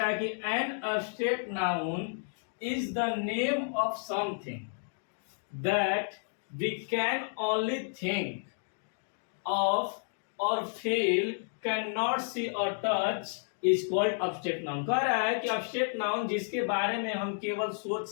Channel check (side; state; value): right; silent; digital silence